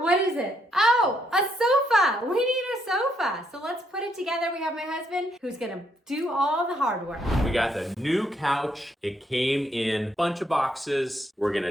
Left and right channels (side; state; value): both; normal; correlation 0.74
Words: What is it? Oh, a sofa. We need a sofa. So let's put it together. We have my husband who's gonna do all the hard work. We got the new couch. It came in a bunch of boxes. We're